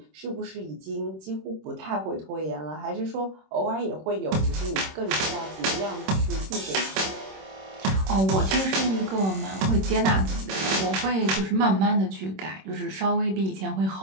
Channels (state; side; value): late; left; 26 ms